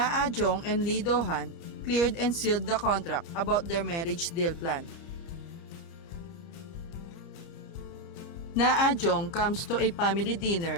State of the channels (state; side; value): late; right; 30 ms